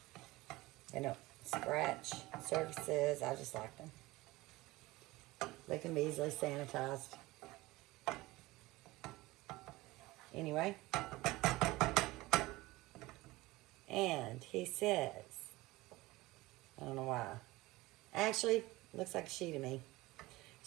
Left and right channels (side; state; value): left; quieter; 19.8 dB